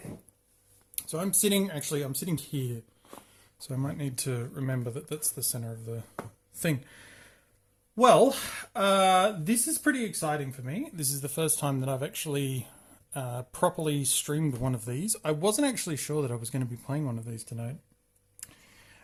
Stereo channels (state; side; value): identical; both; correlation 1.00